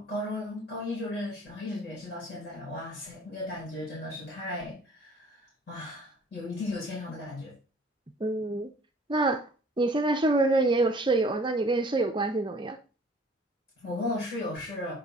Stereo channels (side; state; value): both; normal; correlation 0.52